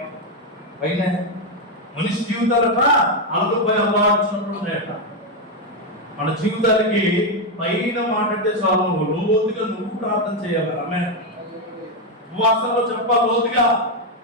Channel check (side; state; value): both; normal; correlation 0.05